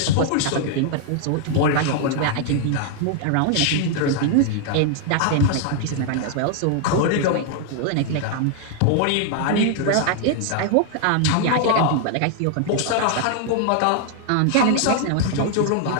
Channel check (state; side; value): different; both; correlation 0.00